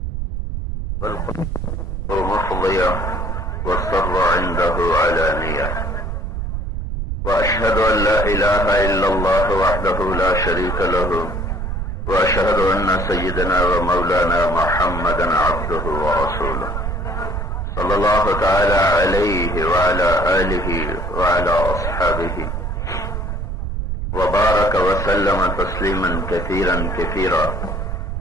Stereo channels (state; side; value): noise; right; rumble, 3 dB below the sound